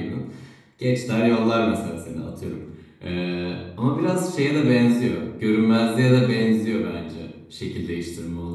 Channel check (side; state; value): both; identical; correlation 1.00